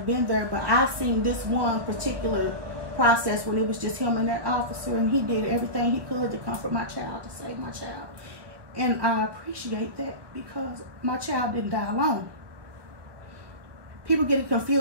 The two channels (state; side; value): late; left; 1.2 ms